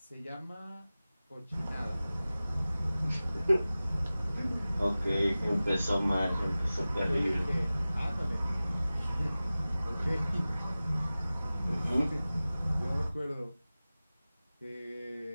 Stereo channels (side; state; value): both; inverted; correlation -0.97